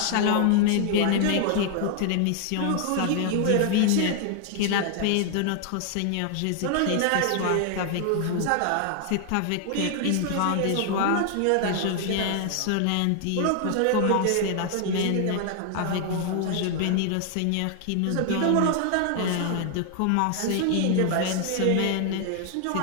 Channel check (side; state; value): both; different; correlation 0.00